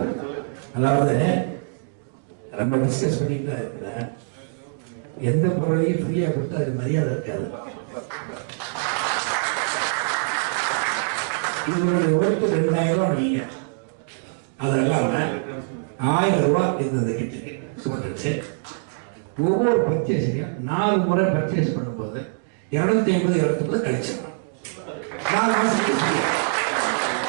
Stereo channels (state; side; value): silent; left; digital silence